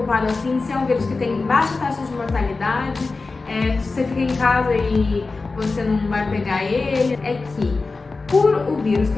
assim se é um vírus que tem baixa taxa de mortalidade, se você fica em casa e você não vai pegar ele? É que por o vírus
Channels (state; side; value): quieter; right; 3.8 dB